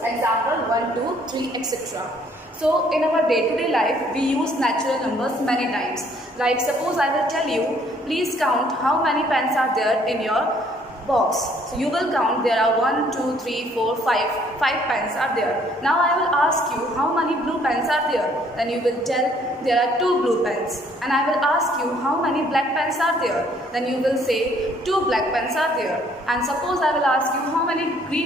example 1, 2, 3, etc. So in our day-to-day life, we use natural numbers many times. Like suppose I will tell you, please count how many pens are there in your box. So you will count there are 1, 2, 3, 4, 5. 5 pens are there. Now I will ask you how many blue pens are there. Then you will tell there are 2 blue pens. And I will ask you how many black pens are there. Then you will say 2 black pens are there. And suppose I will ask you how many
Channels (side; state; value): both; normal; correlation 0.63